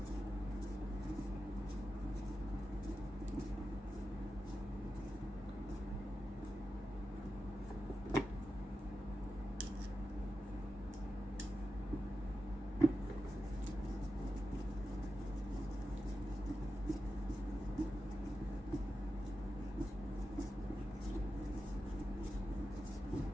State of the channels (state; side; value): normal; both; correlation 0.91